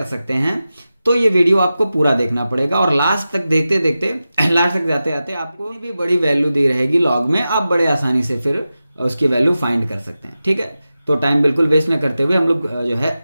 सकते हैं, तो ये वीडियो आपको पूरा देखना पड़ेगा। और लास्ट तक देखते देखते लास्ट तक जाते जाते आपको भी बड़ी वैल्यू दी रहेगी लॉग में, आप बड़े आसानी से फिर उसकी वैल्यू फाइंड कर सकते हैं। ठीक है, तो टाइम बिल्कुल वेस्ट न करते हुए हम लोग जो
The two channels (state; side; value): inverted; both; correlation -0.93